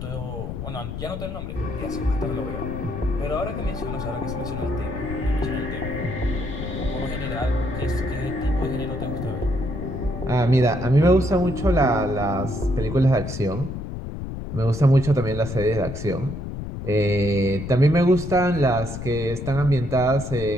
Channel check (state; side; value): noise; left; rumble, 7 dB below the sound